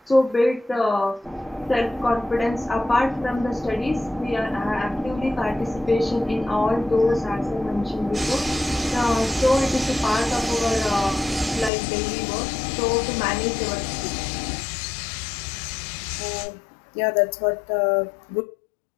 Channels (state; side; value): drops out; right; at 11.7 s